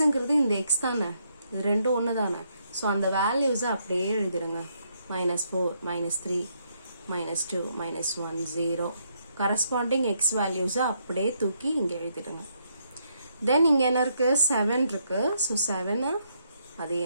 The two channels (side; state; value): both; inverted; correlation -0.75